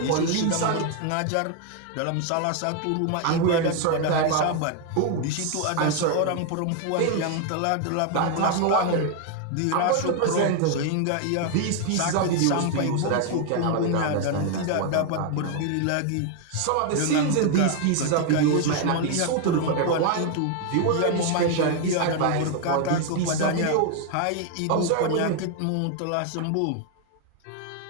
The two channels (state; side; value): different; both; correlation 0.00